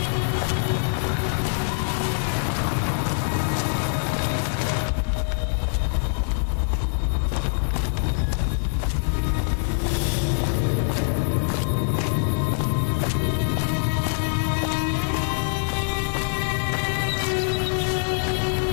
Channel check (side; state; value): right; silent; digital silence